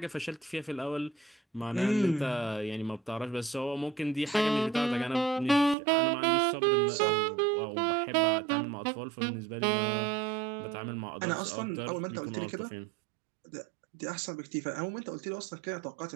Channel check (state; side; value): drops out; left; at 5.8 s